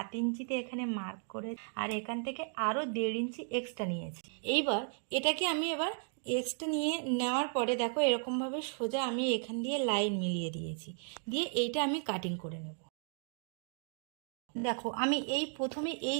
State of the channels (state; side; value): silent; left; 54 dB below the other